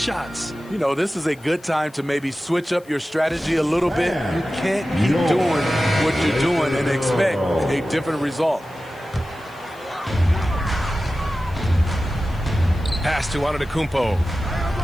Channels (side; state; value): left; noise; hiss, 28 dB below the sound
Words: You know, this is a good time to maybe switch up your strategy a little bit. You can't keep doing what you're doing and expect a different result. Pass to Antetokounmpo.